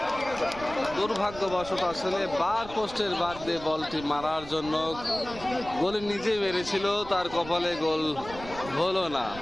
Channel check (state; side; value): noise; right; rumble, 15 dB below the sound